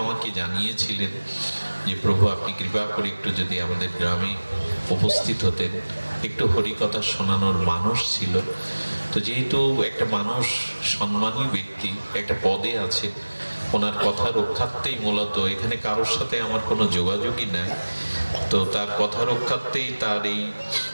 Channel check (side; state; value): both; inverted; correlation -1.00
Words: আমাকে জানিয়েছিলেন যে প্রভু আপনি কৃপা করে একটু যদি আমাদের গ্রামে উপস্থিত হতেন, একটু হরিকথা শোনানোর মানুষ ছিল। তো যেহেতু একটা মানুষ সম্মানী ব্যক্তি, একটা পদে আছে, ওনার কথা রক্ষার্থেই মূলত এখানে কারোর সাথে আমার কোনো যোগাযোগই নাই, তো তার কথা রক্ষার্থেই তার এই